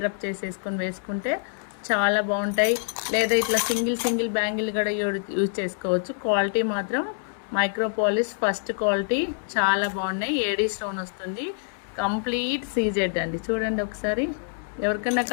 చేసేసుకొని వేసుకుంటే చాలా బాగుంటాయి. లేదా ఇట్లా సింగిల్ బ్యాంగిల్ కూడా యూజ్ చేసుకోవచ్చు. క్వాలిటీ మాత్రం మైక్రోపాలిష్ ఫస్ట్ క్వాలిటీ, చాలా బాగున్నాయి. ఏడీ స్టోన్ వస్తుంది, కంప్లీట్ సీజెడ్ అండి. చూడండి ఒకసారి. ఎవరికన్నా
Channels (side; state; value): right; silent; 61 dB below the other